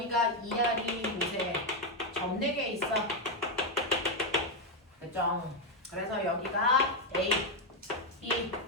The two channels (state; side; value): normal; both; correlation 0.04